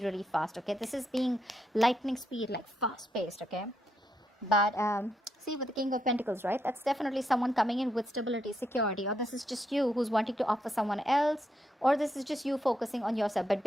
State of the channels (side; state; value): both; normal; correlation 0.80